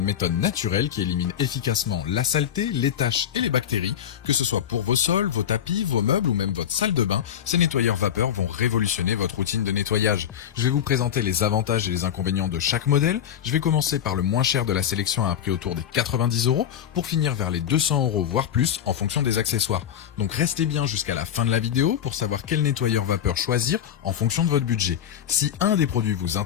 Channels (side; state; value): right; quieter; 9.6 dB